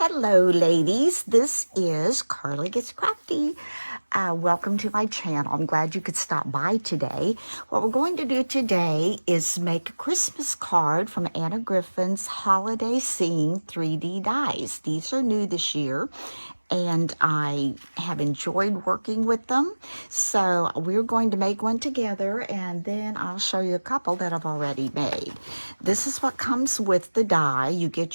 Hello, ladies. This is Carly Gets Crafty. Welcome to my channel. I'm glad you could stop by today. What we're going to do today is make a Christmas card from Anna Griffin's Holiday Scene 3D dies. These are new this year, and I have enjoyed working with them. So we're going to make one together, and then I'll show you a couple that I've already made. This is what comes with the die. You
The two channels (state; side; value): inverted; both; correlation -1.00